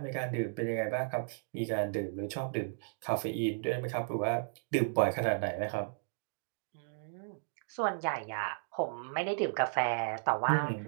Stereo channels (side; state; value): left; silent; digital silence